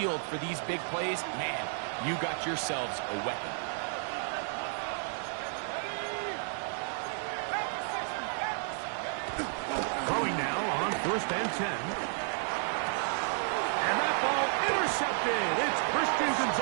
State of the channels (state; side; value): silent; left; 56 dB below the other